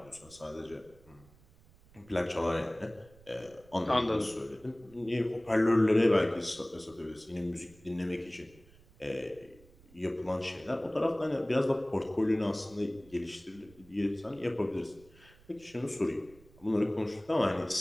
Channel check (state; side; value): noise; right; rumble, 26 dB below the sound